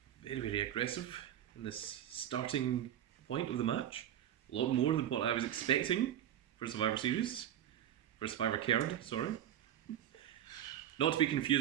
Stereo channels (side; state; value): left; quieter; 11.0 dB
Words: very, very aggressive in this starting point of the match. A lot more than what I was expecting for Survivor Series. For Survivor Kerd, sorry. Not to be